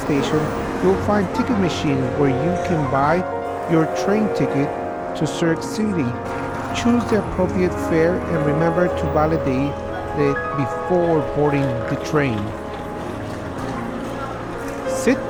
you'll find ticket machines where you can buy your train ticket to Zurich City. Choose the appropriate fare and remember to validate it before boarding the train. Sit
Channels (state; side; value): identical; both; correlation 1.00